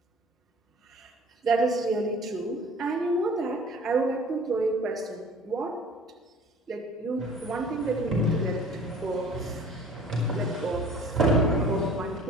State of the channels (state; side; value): normal; both; correlation 0.47